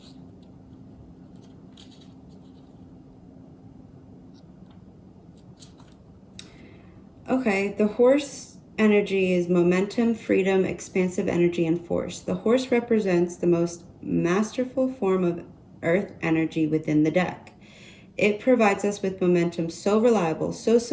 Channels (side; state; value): both; identical; correlation 1.00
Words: Okay, the horse energy is momentum, freedom, expansive energy, and force. The horse represents the most masterful form of earth energy within the deck. It provides us with momentum so reliable, so